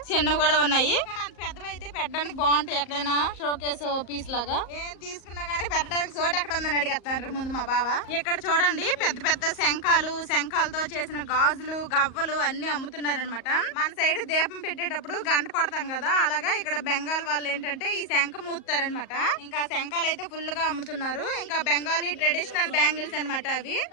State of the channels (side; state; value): right; late; 38 ms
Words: చిన్నవి కూడా ఉన్నాయి, కానీ అంత పెద్దవి అయితే పెట్టడానికి బాగుంటాయి. ఎక్కడైనా షోకేస్ పీస్ లాగా ఏం తీసుకున్నా గానీ పెట్టడానికి చోట ఎక్కడ ఉందని అడిగేస్తాను ముందు మా బావ. ఇక్కడ చూడండి పెద్ద పెద్ద శంఖాలతో చేసిన గాజులు, గవ్వలు అన్ని అమ్ముతున్నారు అనమాట. మన సైడ్ దీపం పెట్టేటప్పుడు గంట కొడతాం కదా, అలాగా ఇక్కడ బెంగాల్ వాళ్ళు ఏంటంటే ఈ శంఖ మూస్తారనమాట. ఇంకా శంఖాలు అయితే ఫుల్ గా అమ్ముతున్నారు. ఇంకా బెంగాలీ ట్రెడిషనల్ బ్యాంగిల్స్ అనమాట అవి.